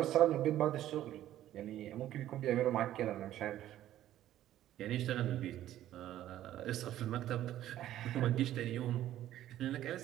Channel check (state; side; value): quieter; left; 12.9 dB